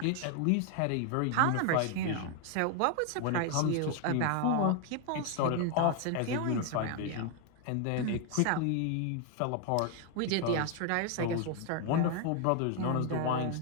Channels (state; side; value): different; both; correlation 0.00